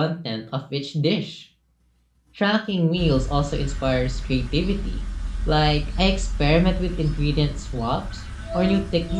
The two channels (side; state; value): both; identical; correlation 1.00